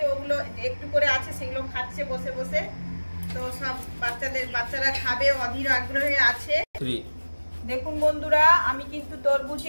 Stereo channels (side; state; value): both; inverted; correlation -1.00